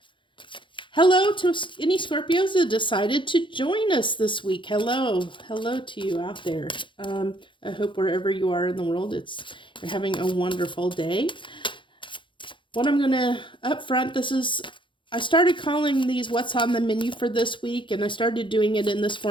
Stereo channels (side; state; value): right; late; 0.24 ms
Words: Hello to any Scorpios that decided to join us this week. Hello to you out there. I hope wherever you are in the world, you're having a wonderful day. What I'm gonna up front, I started calling these what's on the menu for this week, and I started doing it in this